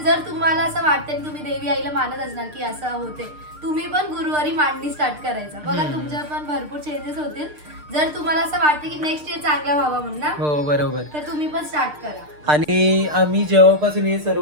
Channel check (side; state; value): left; late; 6.6 ms